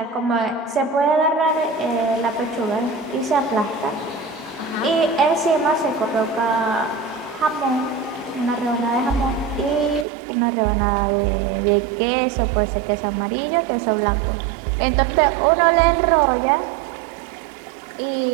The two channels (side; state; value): left; drops out; at 10.1 s